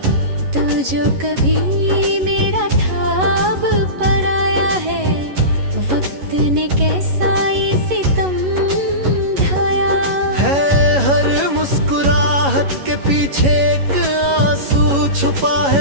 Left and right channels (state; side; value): late; left; 11 ms